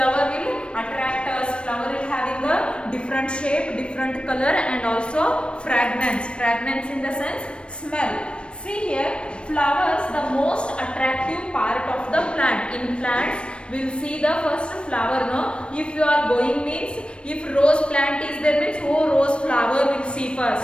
will attract us. Flower will having a different shape, different color and also fragrance. Fragrance in the sense smell. See here, flowers the most attractive part of the plant. In plants, we'll see the first flower, no? If you are going means, if rose plant is there means, oh rose flower will see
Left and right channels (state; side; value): late; right; 0.058 ms